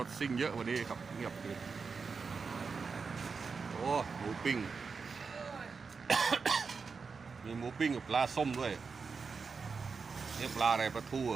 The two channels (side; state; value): left; quieter; 5.1 dB